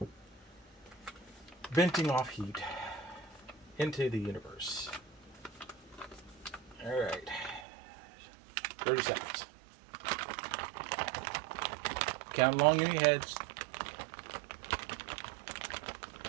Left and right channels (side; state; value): left; drops out; at 7.7 s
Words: venting off heat into the universe. All right, 30 seconds. Count along in your heads.